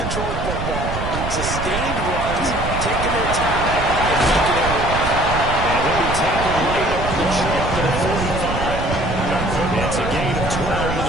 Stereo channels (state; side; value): noise; right; rumble, 5 dB below the sound